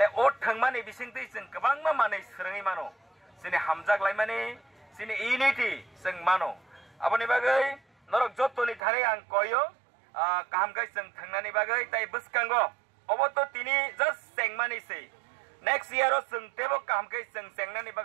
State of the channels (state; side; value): drops out; left; at 8.8 s